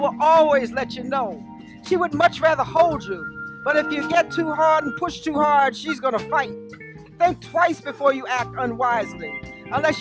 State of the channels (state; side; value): identical; both; correlation 1.00